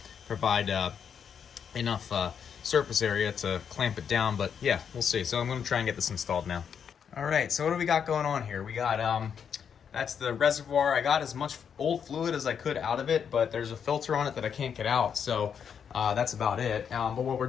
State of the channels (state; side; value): quieter; right; 7.4 dB